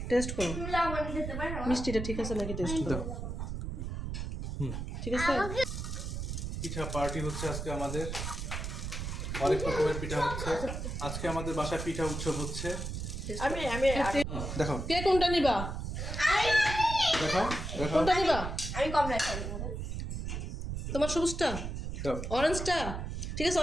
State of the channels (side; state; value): right; noise; rumble, 4 dB below the sound